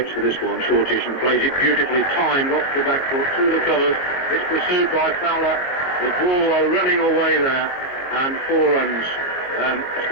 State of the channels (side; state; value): right; late; 22 ms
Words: for this one, shortish, and plays it beautifully timed off the back foot through the covers. It's pursued by Fowler. The ball are running away there, and 4 runs